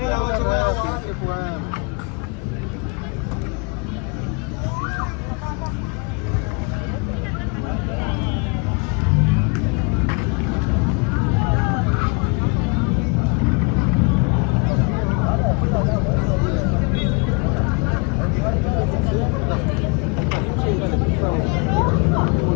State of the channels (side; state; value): right; quieter; 33.2 dB